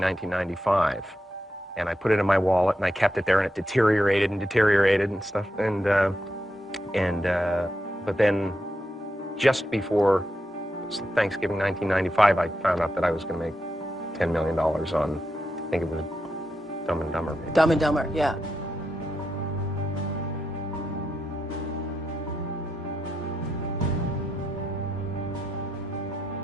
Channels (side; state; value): both; normal; correlation 0.85